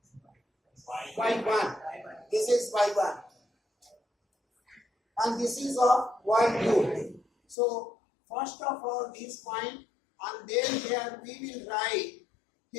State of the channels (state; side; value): drops out; right; at 7.6 s